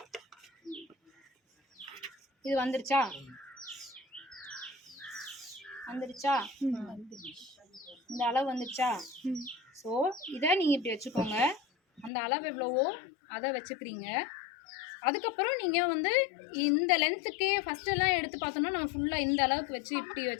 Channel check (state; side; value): drops out; right; at 12.1 s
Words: இது வந்துருச்சா? இந்த அளவு வந்துருச்சா? ஸோ இதை நீங்கள் இப்படி வச்சுக்கோங்க. அந்த அளவு எவ்வளவோ அதை வச்சுக்கிறீங்க. அதுக்கப்புறம் நீங்கள் வந்து இந்த லென்த்துக்கே ஃபஸ்ட்டெல்லாம் எடுத்து பார்த்தோம்னா நம்ம ஃபுல்லாக இந்த அளவுக்கு வச்சு இப்படி